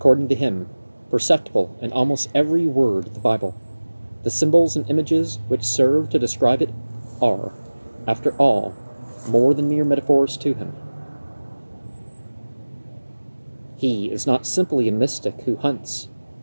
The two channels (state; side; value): inverted; both; correlation -1.00